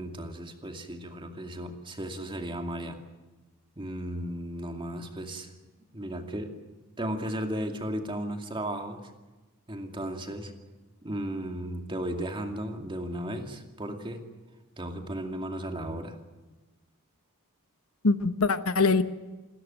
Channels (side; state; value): both; normal; correlation 0.42